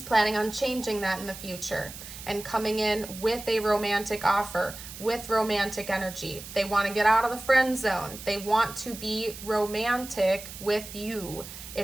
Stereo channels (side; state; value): right; noise; hiss, 13 dB below the sound